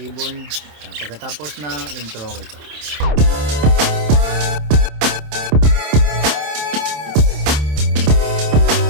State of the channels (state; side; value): late; left; 27 ms